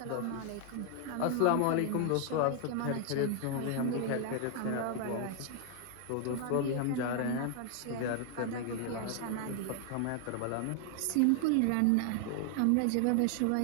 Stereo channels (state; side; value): different; both; correlation 0.00